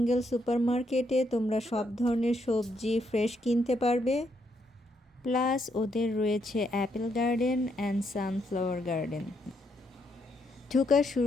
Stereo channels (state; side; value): normal; both; correlation 0.76